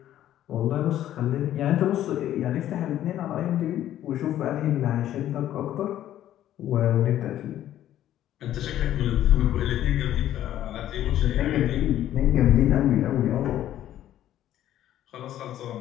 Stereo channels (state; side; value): quieter; right; 12.2 dB